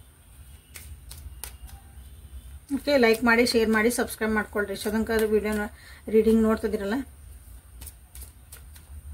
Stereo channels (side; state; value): both; identical; correlation 1.00